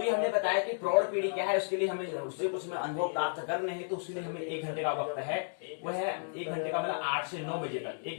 ये हमने बताया कि प्रौढ़ पीढ़ी क्या है, उसके लिए हमें उससे कुछ अनुभव प्राप्त करने हैं, तो उसके लिए हमें 1 घंटे का वक्त है, वो है 1 घंटे का मतलब 8 से 9 बजे तक,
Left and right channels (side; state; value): right; silent; digital silence